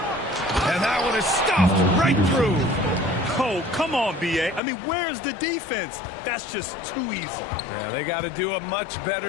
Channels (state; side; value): drops out; right; at 4.6 s